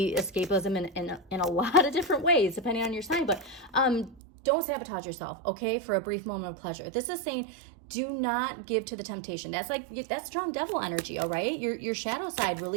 escapism in a lot of different ways, depending on your sign, but don't sabotage yourself, okay, for a brief moment of pleasure. This is saying, do not give to the temptation. That's strong devil energy, all right? Your shadow side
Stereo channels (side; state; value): left; drops out; at 4.2 s